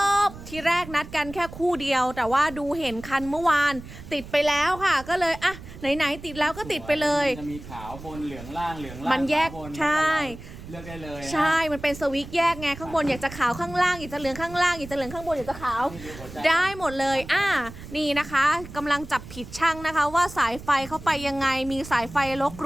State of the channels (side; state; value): right; noise; rumble, 14 dB below the sound